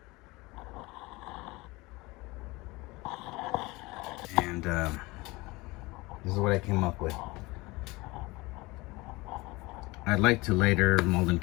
And this is what I came up with. I'd like to later mold and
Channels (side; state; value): right; quieter; 22.7 dB